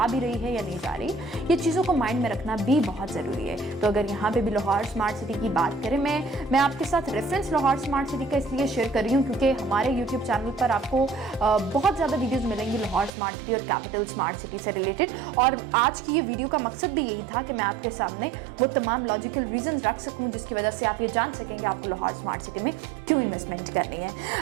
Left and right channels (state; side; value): drops out; left; at 13.1 s